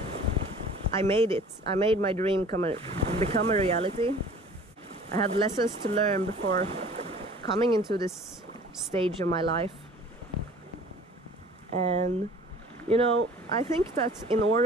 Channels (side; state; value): both; normal; correlation 0.47